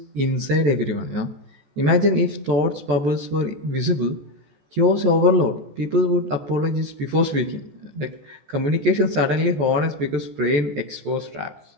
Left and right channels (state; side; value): late; left; 14 ms